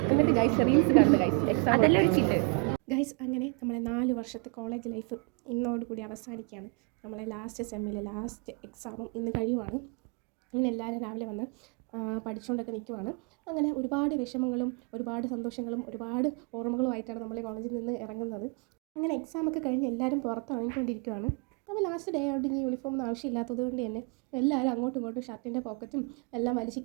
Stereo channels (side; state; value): left; quieter; 35.2 dB